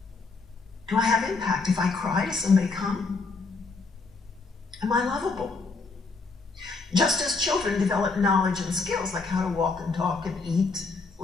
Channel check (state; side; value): quieter; right; 4.1 dB